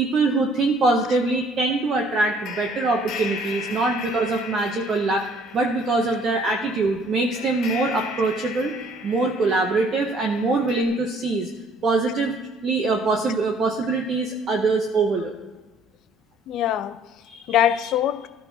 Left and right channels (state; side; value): normal; both; correlation 0.58